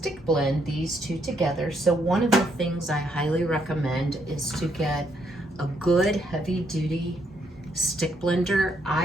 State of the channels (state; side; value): normal; both; correlation 0.74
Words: blend these two together. So one of the things I highly recommend is to get a good heavy duty stick blender.